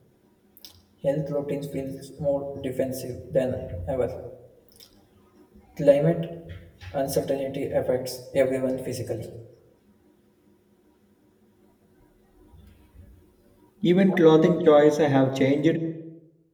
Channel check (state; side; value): identical; both; correlation 1.00